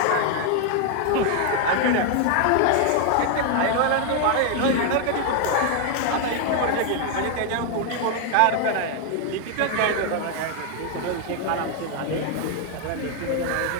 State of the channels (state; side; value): different; both; correlation 0.00